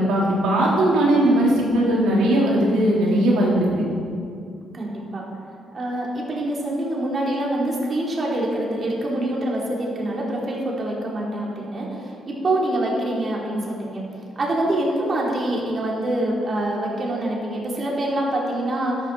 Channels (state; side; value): normal; both; correlation 0.74